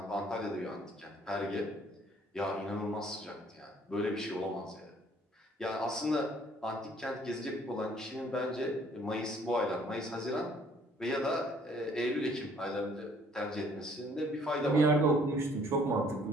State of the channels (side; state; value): both; normal; correlation 0.60